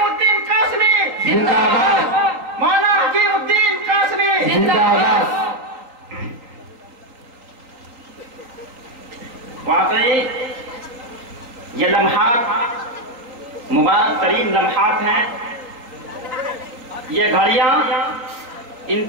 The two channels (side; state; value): left; late; 3.8 ms